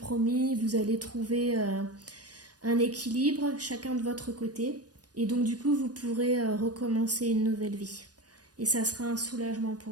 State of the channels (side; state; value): left; late; 0.69 ms